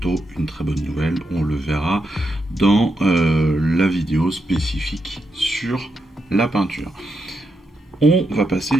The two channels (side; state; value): both; normal; correlation 0.84